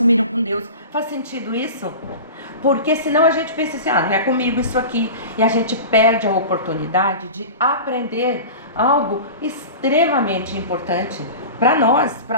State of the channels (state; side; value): inverted; both; correlation -0.33